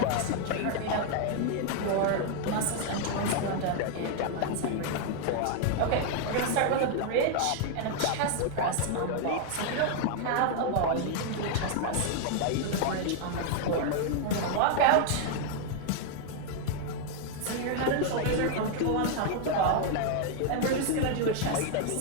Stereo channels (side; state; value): both; different; correlation 0.00